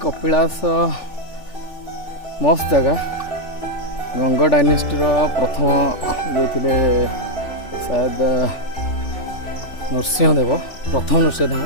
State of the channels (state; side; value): late; right; 3.4 ms